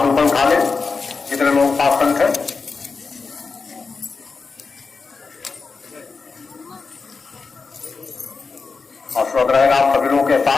ऊपर उठा ले, जितने लोग पास संख है। और श्रोत रहेगा आप सभी लोगों के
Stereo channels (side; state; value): right; quieter; 4.6 dB